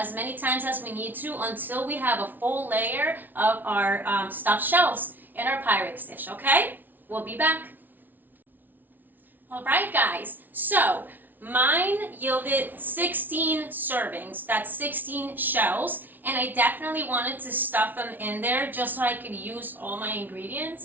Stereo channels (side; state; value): left; late; 0.086 ms